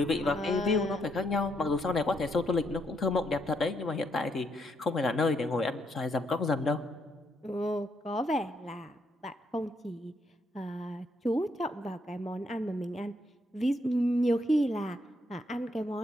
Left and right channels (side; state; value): both; normal; correlation 0.75